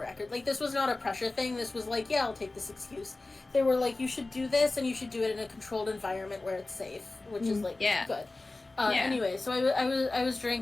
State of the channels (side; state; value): right; quieter; 3.2 dB